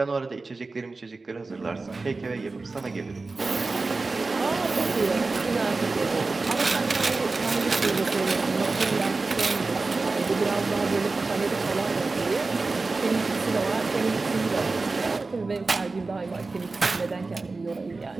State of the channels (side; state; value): left; quieter; 3.7 dB